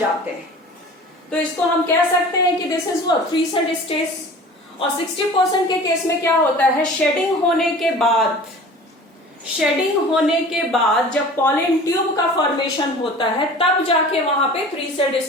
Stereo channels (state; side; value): normal; both; correlation 0.42